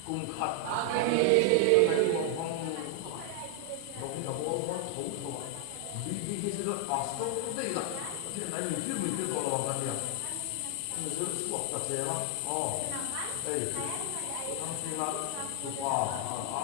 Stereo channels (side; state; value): both; different; correlation 0.00